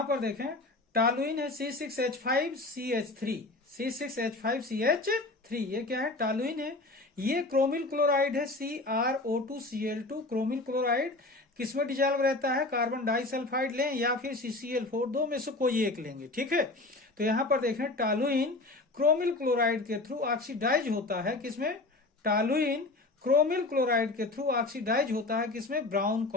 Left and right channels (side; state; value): right; quieter; 3.0 dB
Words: पर देखें टॉलुइन है C6H5CH3, ये क्या है, टॉलुइन है। ये क्रोमिल क्लोराइड है CrO2Cl2, क्रोमिल क्लोराइड किसमें डिजॉल्व रहता है, कार्बन डाइसल्फाइड लें या फिर CCl4, दो में से कोई एक लेंगे, ठीक है। तो यहां पर देखें टॉलुइन क्रोमिल क्लोराइड के थ्रू ऑक्सीडाइज होता है किसमें, टॉलुइन क्रोमिल क्लोराइड के थ्रू ऑक्सीडाइज होता है किसमें, ब्राउन